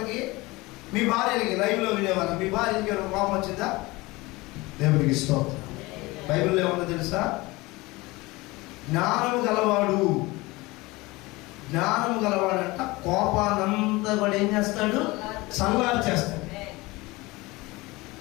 మీ భార్యలకి? లైవ్లో వినేవాళ్ళు, మీ భార్యకి కోపం వచ్చిందా? దేవునికి స్తోత్రం. బైబిల్లో ఏమన్నా తెలుసా? జ్ఞానము గలవాడంట కోపానంతా కూడా ఏం చేస్తాడు? చల్లారు చేస్తాడు.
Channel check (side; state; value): right; quieter; 22.1 dB